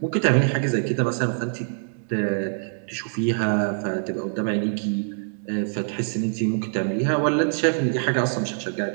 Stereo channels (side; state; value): left; silent; digital silence